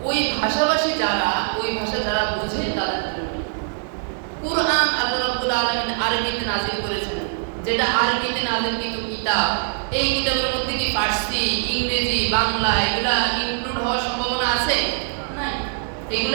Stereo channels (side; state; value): left; silent; digital silence